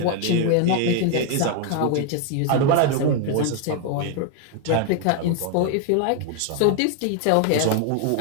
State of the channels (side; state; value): both; different; correlation 0.00